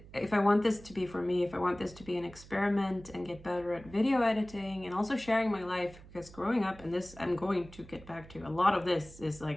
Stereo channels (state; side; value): noise; right; hum, 19 dB below the sound